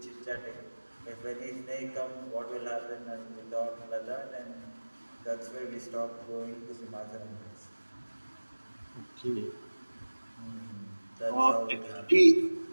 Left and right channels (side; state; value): both; inverted; correlation -1.00